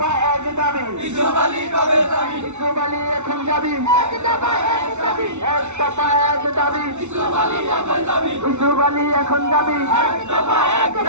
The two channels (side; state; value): left; late; 0.82 ms